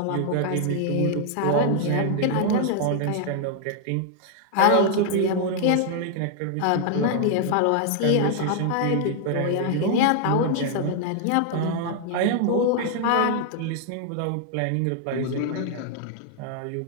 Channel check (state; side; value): different; both; correlation 0.00